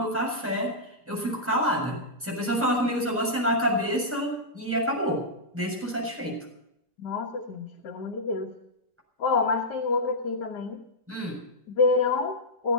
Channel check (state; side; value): normal; both; correlation -0.09